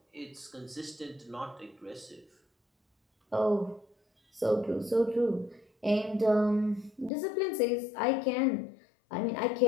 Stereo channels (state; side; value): drops out; right; at 7.1 s